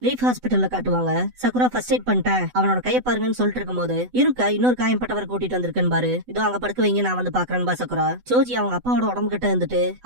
லீஃப் ஹாஸ்பிட்டல்ல காட்டுவாங்க. சக்குரா ஃபர்ஸ்ட் எய்ட் பண்ணிட்டேன், அவனோட கைய பாருங்கன்னு சொல்லிட்டு இருக்கும் போது இருக்கா இன்னொரு காயம்பட்டவரை கூட்டிட்டு வந்திருக்கேன் பாரு, இதோ அங்க படுக்க வைங்க, நான் வந்து பாக்குறேன் பா சக்குரா. சோஜி அவங்க அப்பாவோட உடம்பு கிட்ட இருந்துட்டு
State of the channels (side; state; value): left; late; 8.0 ms